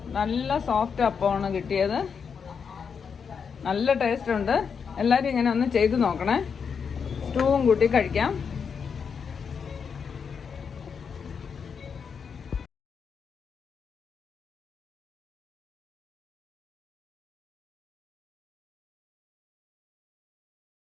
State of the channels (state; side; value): quieter; right; 6.3 dB